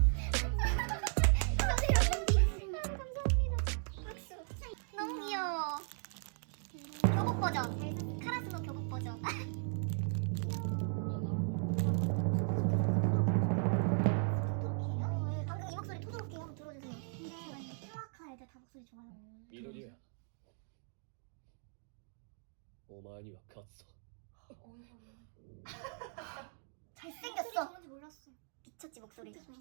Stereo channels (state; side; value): silent; left; 53 dB below the other